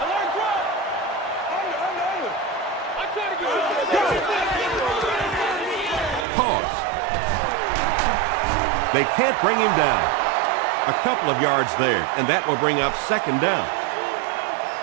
Pause. They can't bring him down. A couple of yards there, and that will bring up second down.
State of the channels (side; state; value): left; drops out; at 6.2 s